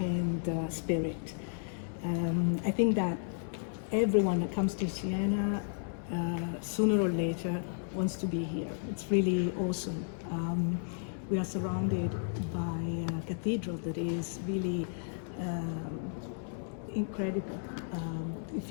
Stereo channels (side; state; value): right; silent; digital silence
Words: spirit. I think that everyone that comes to Siena, sooner or later, wants to be here. It's really awesome. We are surrounded by a cathedral that is really incredible. If